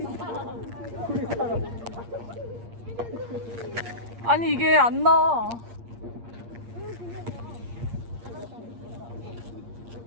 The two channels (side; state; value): left; late; 8.6 ms